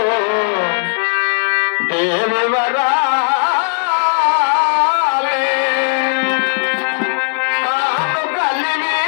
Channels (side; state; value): right; silent; 55 dB below the other